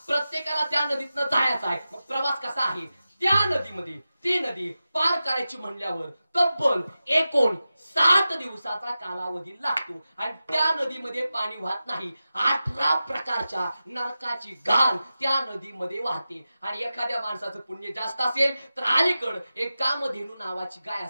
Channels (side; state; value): both; inverted; correlation -0.93